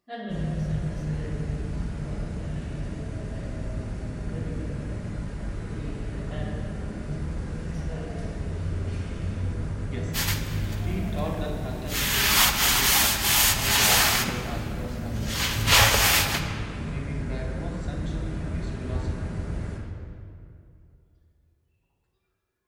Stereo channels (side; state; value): both; identical; correlation 1.00